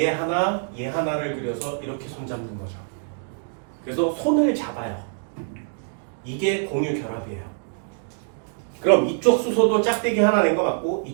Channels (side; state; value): left; silent; digital silence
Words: 하나, 얘 하나를 그려서 이렇게 손잡는 거죠. 그래서 손을 잡아요. 이게 공유 결합이에요. 그럼 이쪽 수소도 짝대기 하나 낸 거 맞고